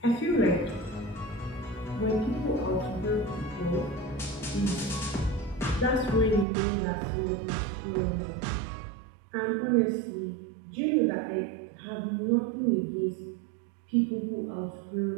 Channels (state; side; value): drops out; left; at 6.5 s